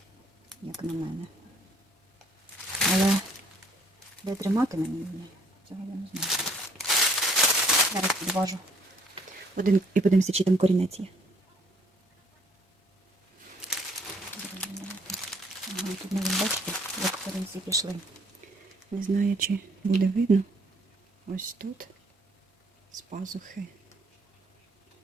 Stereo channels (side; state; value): both; normal; correlation 0.63